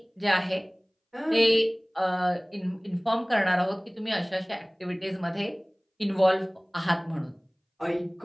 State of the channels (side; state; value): both; identical; correlation 1.00